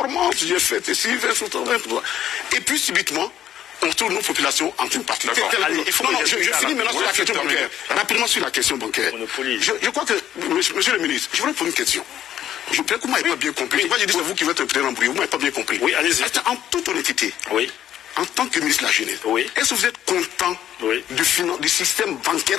j'ai fait ceci, et puis subitement, on trouve nos populations en une partie. Je finis maintenant sur la question bancaire. Rapidement sur la question bancaire. Je crois que, monsieur le ministre, je voudrais poser une question. Je crois que vous ne m'avez pas bien compris. Je dis c'est vous qui êtes un peu embrouillé. Vous ne m'avez pas bien compris. Oui, allez-y. En toute honnêteté, en tant que ministre de la Jeunesse, est-ce que vous êtes content du système bancaire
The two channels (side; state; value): right; quieter; 11.1 dB